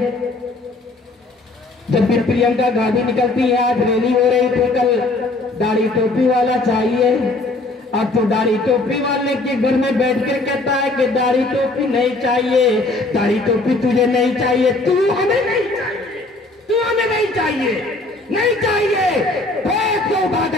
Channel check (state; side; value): quieter; right; 3.0 dB